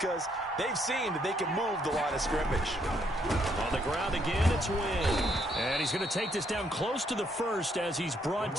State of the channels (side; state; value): both; normal; correlation 0.71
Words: they've seen that they can move the line of scrimmage. On the ground again, it's Wynn. And he's going to take this down close to the first as he's brought